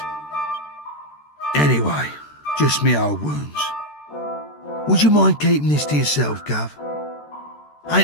Anyway, just me old wounds. Would you mind keeping this to yourself, Gov?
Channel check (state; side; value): late; right; 13 ms